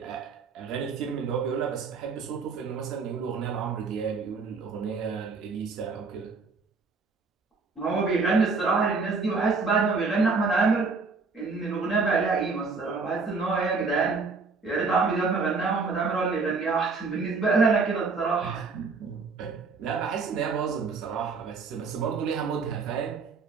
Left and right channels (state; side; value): quieter; left; 4.5 dB